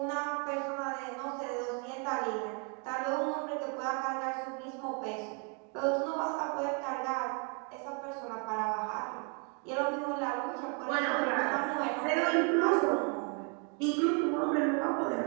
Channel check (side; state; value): left; quieter; 37.3 dB